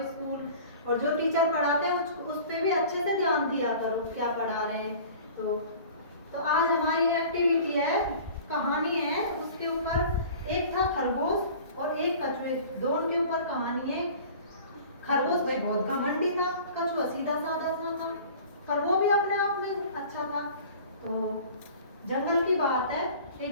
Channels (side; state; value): both; inverted; correlation -0.43